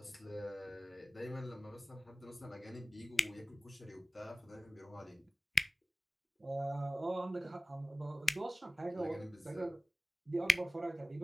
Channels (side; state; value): both; normal; correlation 0.97